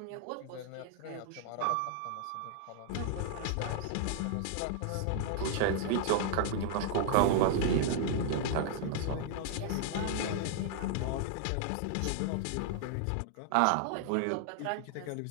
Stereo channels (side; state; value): both; different; correlation 0.00